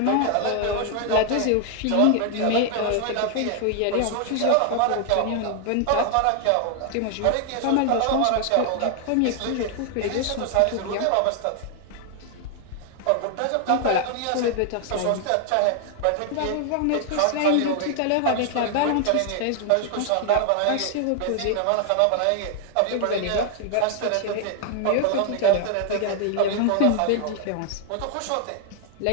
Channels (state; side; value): different; both; correlation 0.00